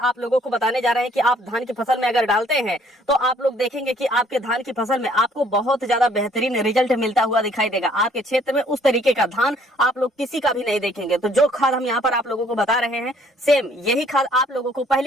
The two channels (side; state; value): both; normal; correlation 0.61